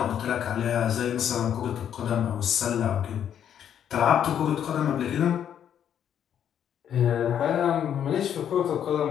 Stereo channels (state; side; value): quieter; right; 9.3 dB